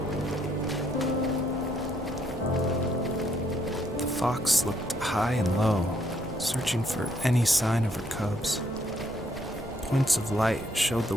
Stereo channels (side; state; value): both; normal; correlation 0.71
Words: The fox looked high and low, searching for any sign of her cubs. Points of light showed the